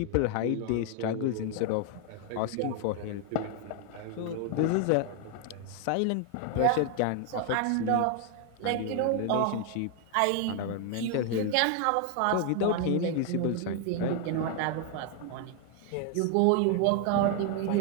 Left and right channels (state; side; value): different; both; correlation 0.00